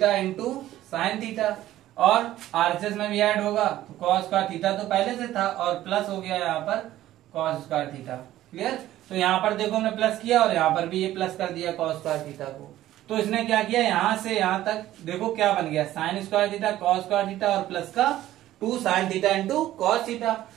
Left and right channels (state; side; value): quieter; left; 14.1 dB